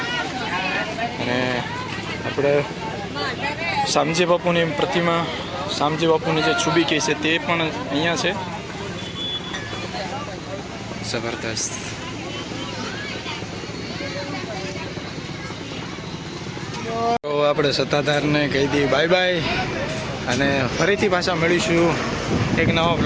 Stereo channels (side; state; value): both; identical; correlation 1.00